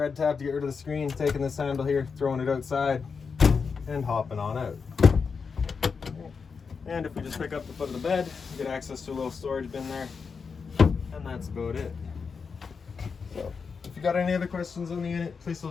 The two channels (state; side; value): quieter; right; 5.4 dB